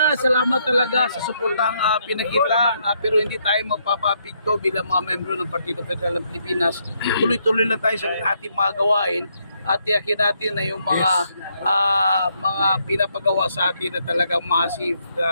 salamat talaga sa suportang pinakita, pero hindi tayo mapapapigto bilang mga membro ng Partido Federal ng Pilipinas. Tuloy-tuloy lang tayo sa ating mga gawain at tiyakin natin na yung mga pinapagawa sa atin na talagang massive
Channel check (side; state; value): both; inverted; correlation -0.75